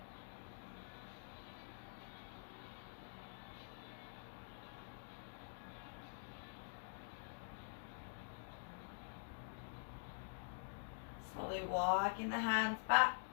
Slowly walking the hands back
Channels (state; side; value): silent; right; digital silence